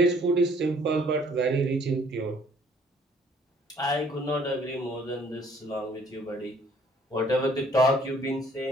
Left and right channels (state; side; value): normal; both; correlation 0.60